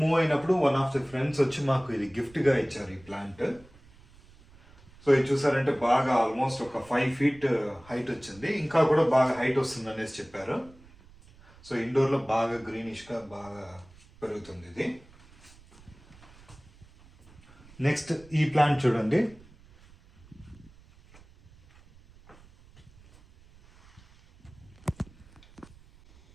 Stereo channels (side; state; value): right; noise; rumble, 25 dB below the sound